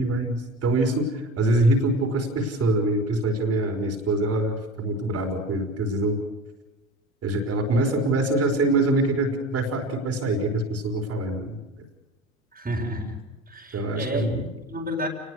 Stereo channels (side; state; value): both; normal; correlation 0.33